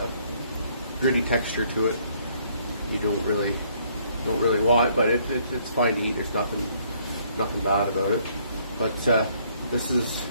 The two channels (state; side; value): inverted; both; correlation -0.66